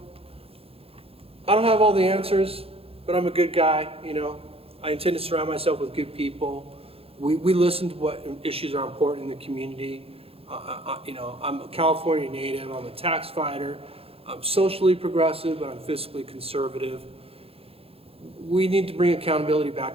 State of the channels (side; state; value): left; late; 0.28 ms